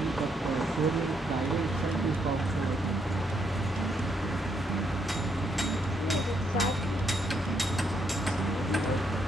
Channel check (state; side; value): normal; both; correlation 0.75